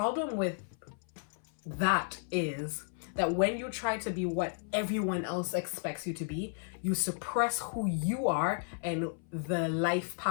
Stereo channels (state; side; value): silent; right; 56 dB below the other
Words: with that is that when you try to be what everyone else expects you to be, you suppress who you are and the life